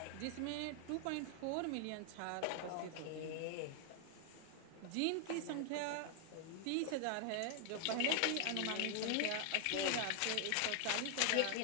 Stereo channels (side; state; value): both; different; correlation 0.00